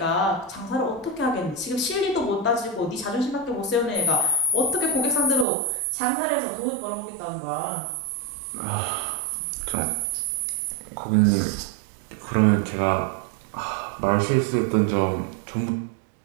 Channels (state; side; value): drops out; left; at 5.5 s